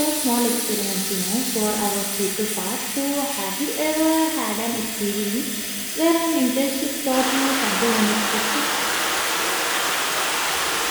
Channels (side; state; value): both; identical; correlation 1.00